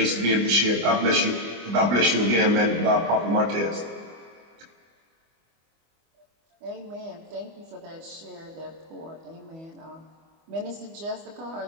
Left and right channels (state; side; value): late; left; 25 ms